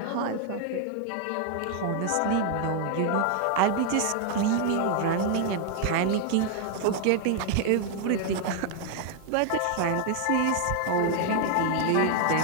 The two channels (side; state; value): both; different; correlation 0.00